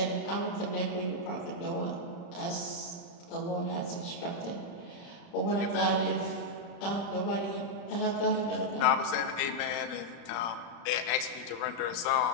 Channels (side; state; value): right; late; 35 ms